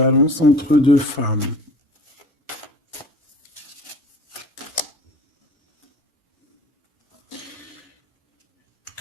entre deux femmes.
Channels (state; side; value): normal; both; correlation 0.43